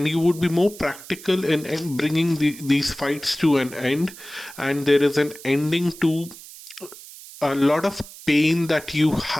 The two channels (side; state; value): right; noise; hiss, 17 dB below the sound